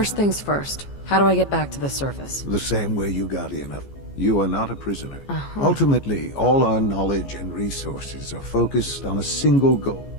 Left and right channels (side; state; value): right; late; 14 ms